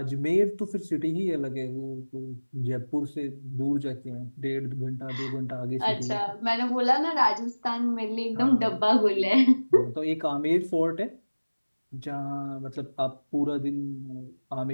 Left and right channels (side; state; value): both; inverted; correlation -1.00